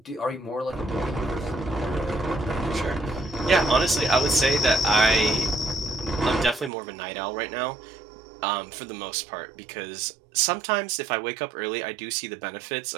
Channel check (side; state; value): left; drops out; at 6.7 s